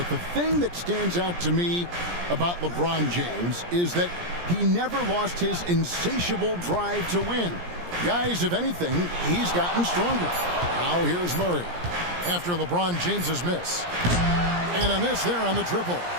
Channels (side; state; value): left; late; 17 ms